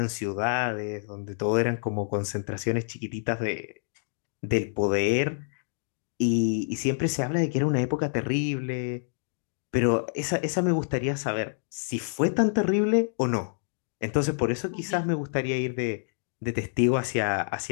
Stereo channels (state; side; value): silent; right; digital silence